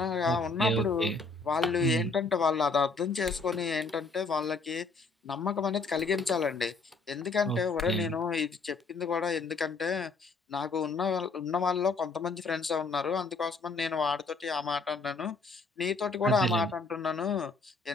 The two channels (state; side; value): quieter; right; 3.9 dB